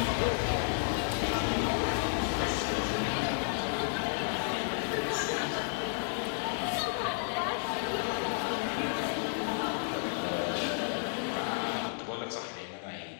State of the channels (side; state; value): right; silent; digital silence